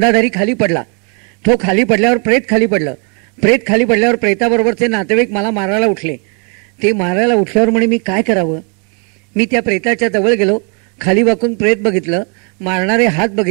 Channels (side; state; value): left; quieter; 37.6 dB